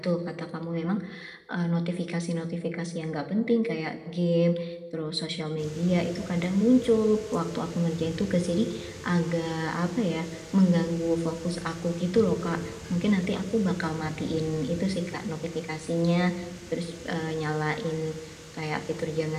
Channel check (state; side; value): identical; both; correlation 1.00